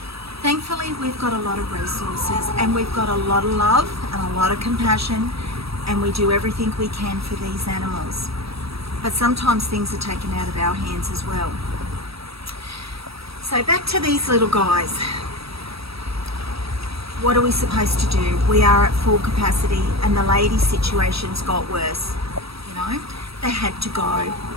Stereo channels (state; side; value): late; left; 0.77 ms